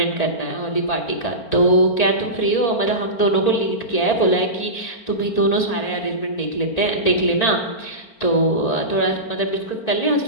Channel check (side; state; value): right; late; 4.4 ms